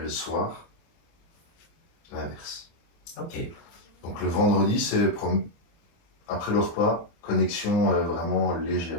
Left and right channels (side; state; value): right; late; 24 ms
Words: soir, l'inverse. Ok. Donc le vendredi, c'est après le repas, connexion vraiment